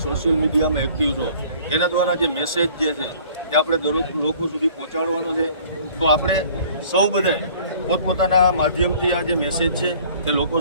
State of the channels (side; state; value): both; inverted; correlation -0.53